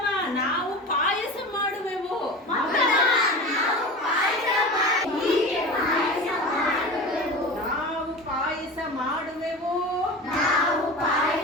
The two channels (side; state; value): both; normal; correlation 0.31